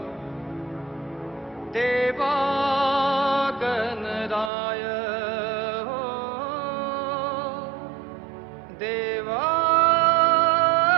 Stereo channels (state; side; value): drops out; left; at 4.5 s